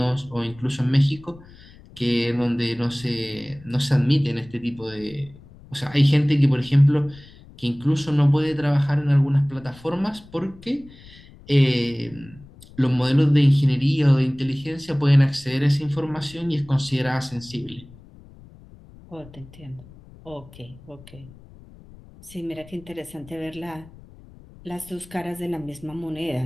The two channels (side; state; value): left; noise; rumble, 22 dB below the sound